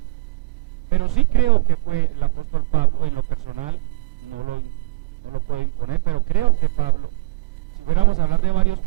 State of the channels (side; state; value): left; quieter; 25.4 dB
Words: pero sí creo que fue el apóstol Pablo. En lo personal no lo puedo imponer, pero creo que Pablo. Si fuéramos a hablar de varios